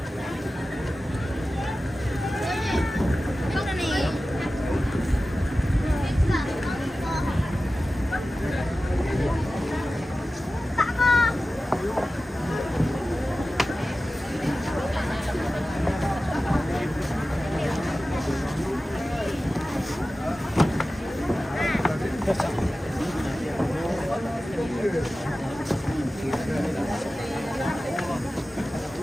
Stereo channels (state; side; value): normal; both; correlation 0.95